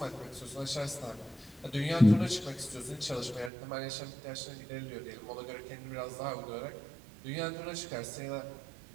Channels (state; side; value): drops out; left; at 3.5 s